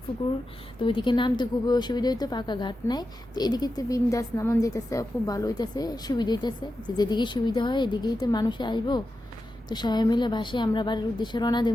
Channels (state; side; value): normal; both; correlation 0.90